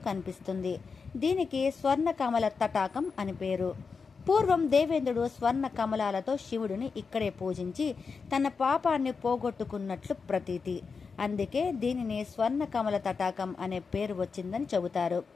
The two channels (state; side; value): quieter; right; 5.1 dB